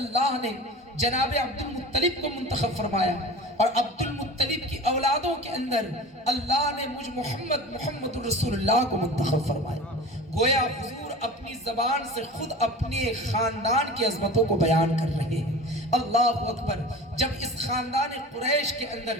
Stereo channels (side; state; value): both; normal; correlation 0.36